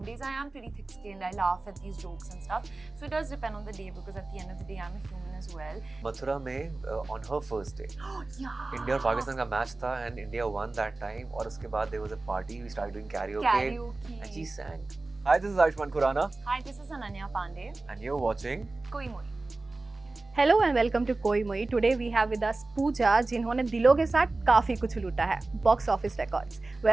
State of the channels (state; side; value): quieter; left; 3.2 dB